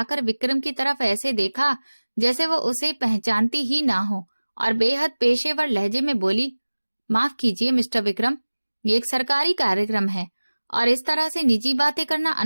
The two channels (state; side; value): inverted; both; correlation -1.00